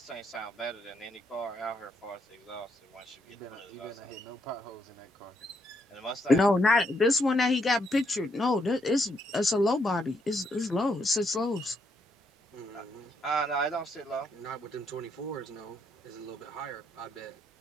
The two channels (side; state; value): both; normal; correlation 0.75